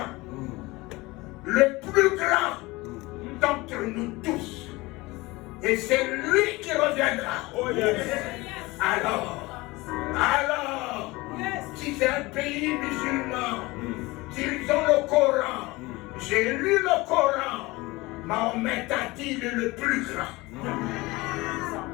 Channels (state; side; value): quieter; right; 21.8 dB